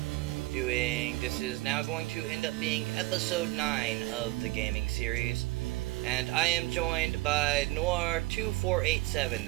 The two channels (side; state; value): left; quieter; 20.9 dB